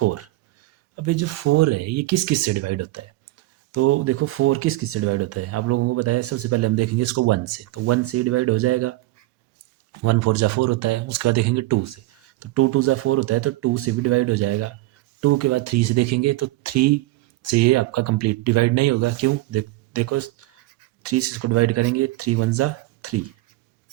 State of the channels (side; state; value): left; quieter; 18.7 dB